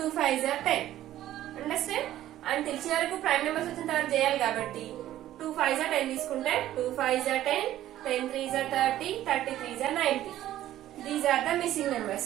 5s are 10. Understand? And తెలిసిన వరకు ప్రైమ్ నెంబర్స్ వచ్చిన తర్వాత చేయాలి కాబట్టి 2 5s are 10 తీసుకుంటే 2 5s are 10, 10 3s are 30, 30 3s are 90. These are the missing numbers.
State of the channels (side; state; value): left; quieter; 13.3 dB